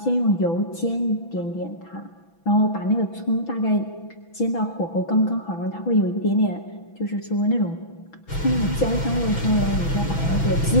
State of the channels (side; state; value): right; late; 6.1 ms